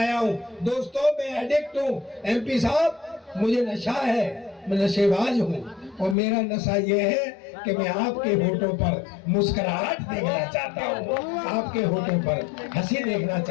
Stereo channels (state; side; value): drops out; right; at 6.2 s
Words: हूँ। दोस्तों मैं एडिक्ट हूँ। एमपी साहब मुझे नशा है, मैं नशेबाज हूँ और मेरा नशा ये है कि मैं आपके होठों पर मुस्कुराहट देखना चाहता हूँ, आपके होठों पर हंसी देखना